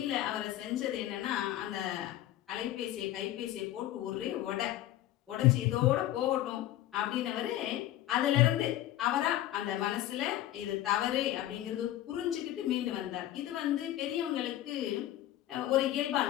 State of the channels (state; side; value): quieter; right; 13.6 dB